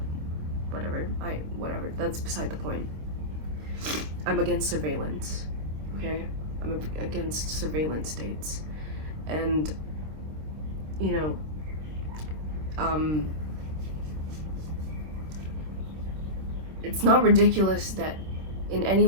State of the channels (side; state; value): left; late; 26 ms